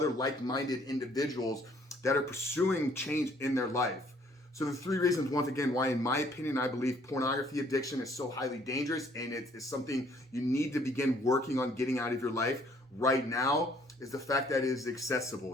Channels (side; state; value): both; normal; correlation 0.62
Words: like-minded individuals that are pursuing change in their life. So the 3 reasons, once again, why, in my opinion, I believe pornography addiction is so highly dangerous, and it's something you need to begin working on getting out of your life right now, is the fact that it is